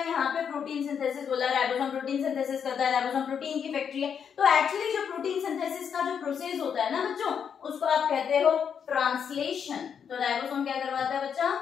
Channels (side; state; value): right; quieter; 7.4 dB